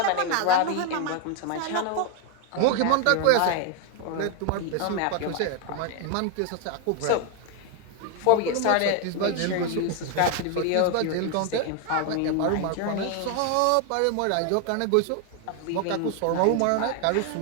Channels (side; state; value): both; different; correlation 0.01